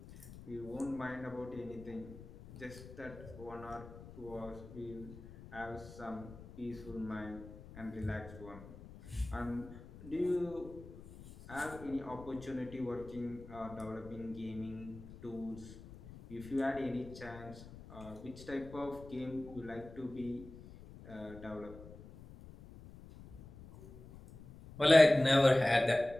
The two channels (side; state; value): left; noise; rumble, 16 dB below the sound